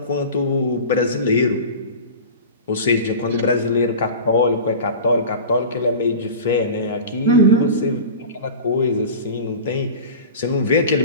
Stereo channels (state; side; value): inverted; both; correlation -0.34